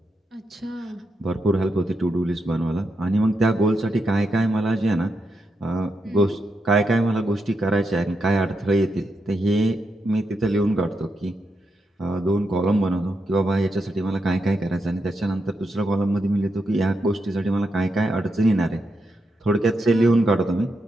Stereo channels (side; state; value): both; normal; correlation 0.84